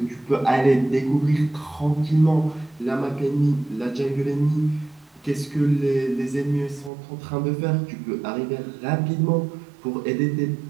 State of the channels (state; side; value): drops out; left; at 6.9 s